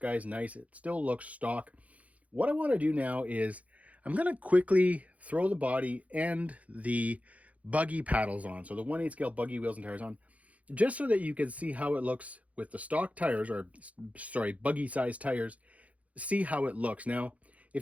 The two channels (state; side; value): late; left; 0.068 ms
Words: nice. It still looks stock. What I want to do now is I'm going to quickly throw the body and the Buggy paddles on. So the 1/8 scale Buggy wheels and tires on, just so that you can see how it looks with the stock tires, or sorry, Buggy size tires. See how it looks. Now,